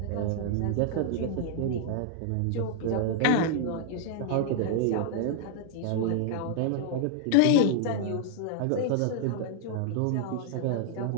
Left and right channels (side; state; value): both; different; correlation 0.00